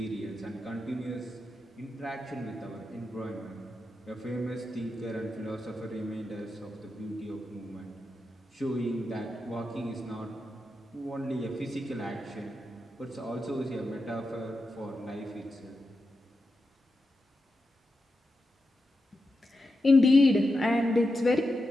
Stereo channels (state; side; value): normal; both; correlation 0.89